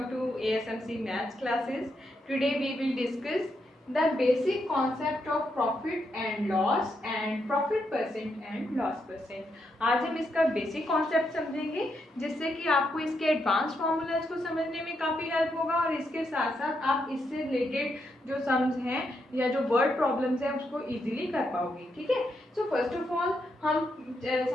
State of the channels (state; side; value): normal; both; correlation 0.80